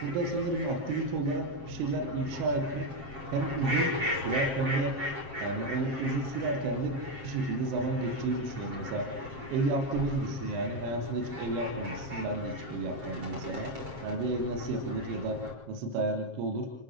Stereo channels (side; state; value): left; late; 7.5 ms